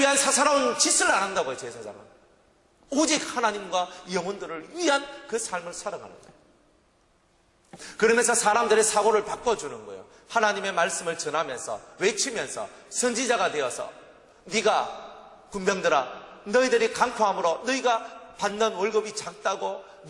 사사로운 짓을 안 한다고요. 제사장은 오직 하나님과 영혼들을 위한 그 삶을 살아가는 거예요. 그러면서 사람들의 사고를 바꿔주는 거예요. 하나님의 말씀을 전하면서, 외치면서 선지자가 되어서, 네가 군병들아, 너희들이 강포함으로 너희가 받는 월급이 작다고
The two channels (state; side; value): identical; both; correlation 1.00